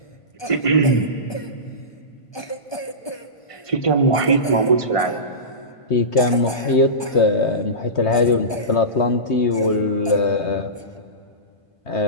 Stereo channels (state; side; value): late; right; 1.2 ms